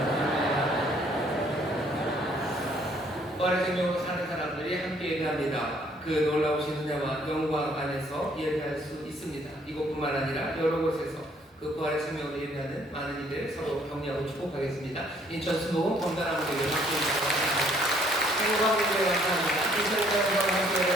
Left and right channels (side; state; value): both; normal; correlation 0.63